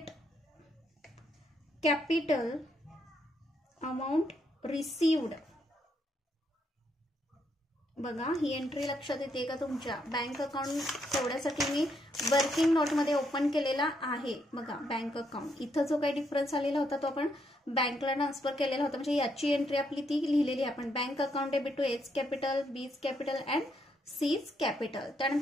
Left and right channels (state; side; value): normal; both; correlation 0.76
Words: capital amount received. बघा, ही एंट्री लक्षात येते का तुमच्या? बँक अकाउंट तेवढ्यासाठी मी वर्किंग नोटमध्ये ओपन केलेला आहे. बघा, बँक अकाउंट इथं जो काही डिफरन्स आलेला होता तो आपण बँकला ट्रान्सफर केलेला होता, म्हणजे याची एंट्री आपली ती लिहिलेली आहे आपण. Bank account debit to H capital, B's capital and C's capital.